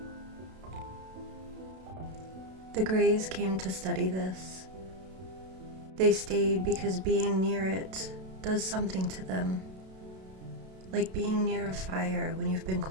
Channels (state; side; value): late; left; 32 ms